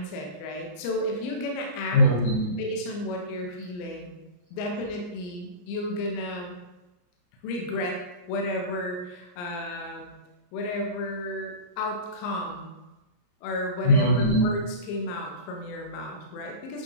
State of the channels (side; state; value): right; late; 34 ms